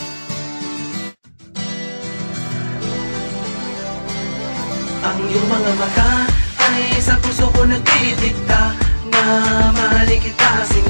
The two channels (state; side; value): inverted; both; correlation -1.00